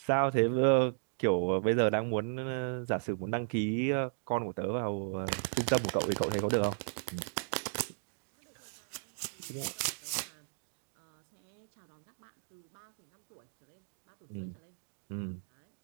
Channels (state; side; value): silent; left; digital silence